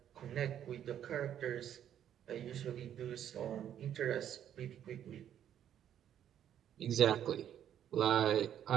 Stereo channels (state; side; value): quieter; left; 10.1 dB